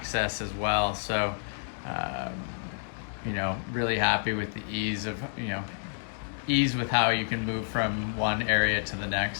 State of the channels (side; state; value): right; silent; digital silence